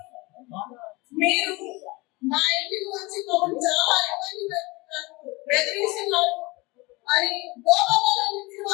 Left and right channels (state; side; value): quieter; right; 23.9 dB